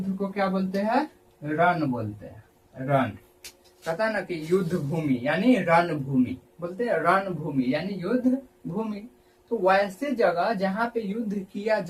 को क्या बोलते हैं? रण बोलते हैं। रण कहता ना कि युद्ध भूमि यानी रण भूमि, बोलते हैं रण भूमि यानी युद्ध भूमि। तो वैसे जगह जहाँ पे युद्ध किया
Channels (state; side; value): identical; both; correlation 1.00